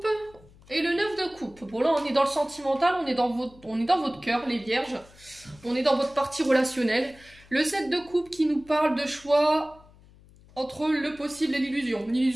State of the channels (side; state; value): left; noise; hum, 25 dB below the sound